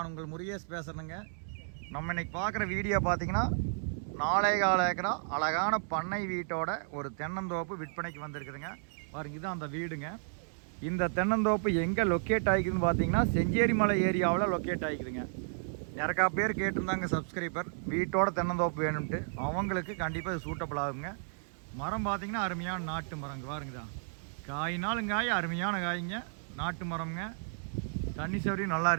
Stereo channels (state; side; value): silent; left; digital silence